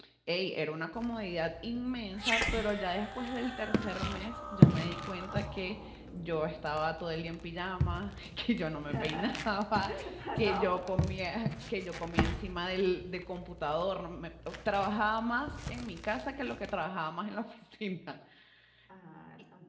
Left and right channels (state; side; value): identical; both; correlation 1.00